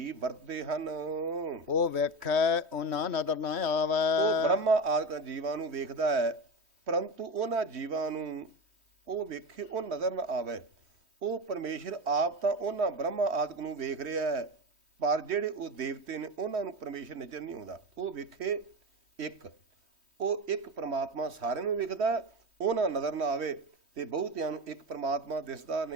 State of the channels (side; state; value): left; late; 3.1 ms